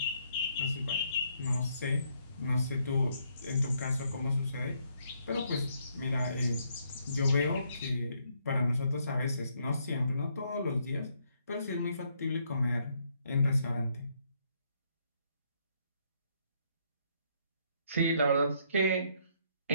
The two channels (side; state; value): both; inverted; correlation -0.72